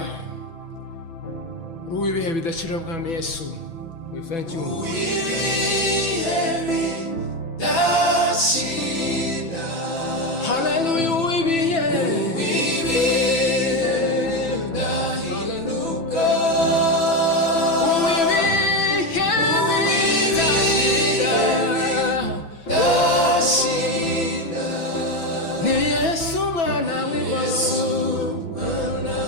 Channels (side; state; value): right; late; 6.0 ms